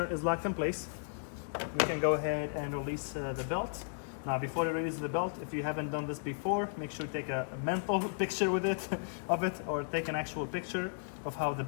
is locked in place. We can go ahead and release the belt. Now before you release the belt, if you haven't done this before, make sure you take a mental picture with it, or take an actual picture of how the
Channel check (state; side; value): silent; right; digital silence